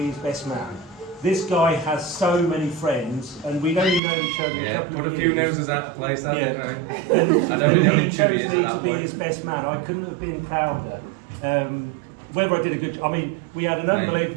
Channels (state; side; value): drops out; left; at 4.0 s